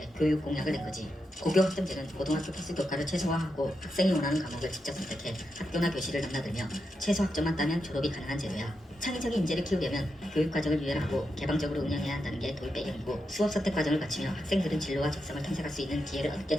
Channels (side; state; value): both; normal; correlation 0.86